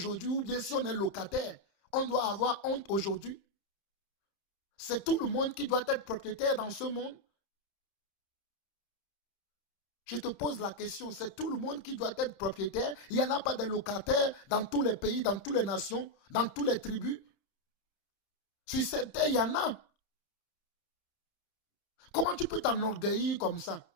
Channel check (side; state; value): right; late; 30 ms